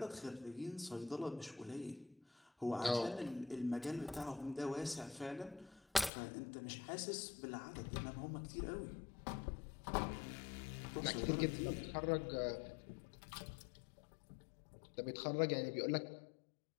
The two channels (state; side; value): drops out; right; at 6.1 s